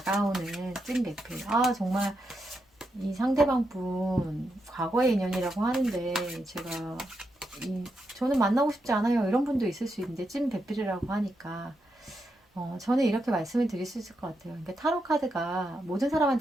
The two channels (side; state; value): both; normal; correlation 0.84